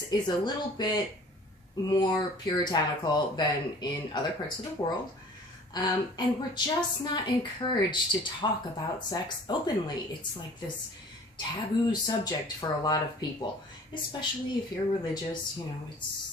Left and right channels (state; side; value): normal; both; correlation 0.48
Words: is a little bit more puritanical than in other parts of the world. And we're just not encouraged to talk about sex openly. It's like this taboo subject for a lot of people, especially if you're religious.